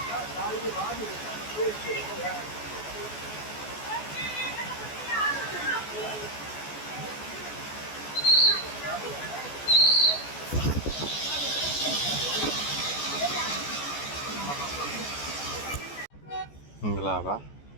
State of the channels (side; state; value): right; late; 14 ms